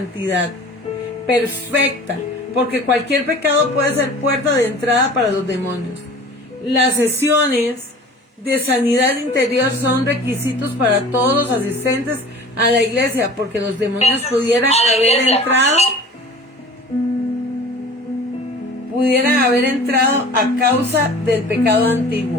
perfecta, porque cualquier pecado puede ser puerta de entrada para los demonios. Las sesiones de sanidad interior son requisitos para todos los asistentes a la iglesia, porque los demonios pudieran haber entrado a causa del pecado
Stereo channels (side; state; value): both; normal; correlation 0.42